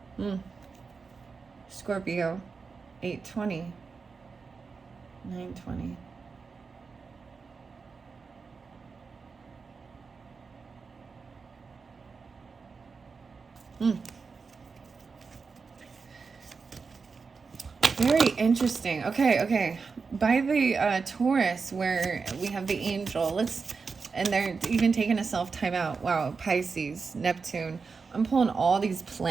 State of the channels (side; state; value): left; quieter; 4.9 dB